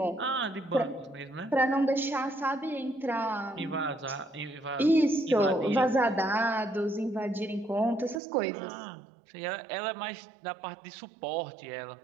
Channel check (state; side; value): drops out; left; at 8.2 s